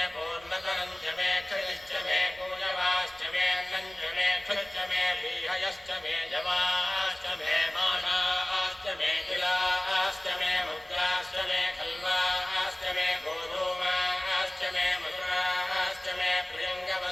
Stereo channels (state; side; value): noise; right; rumble, 27 dB below the sound